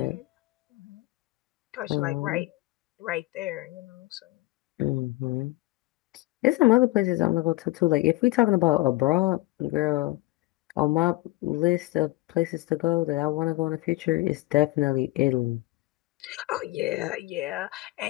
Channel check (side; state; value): right; quieter; 20.6 dB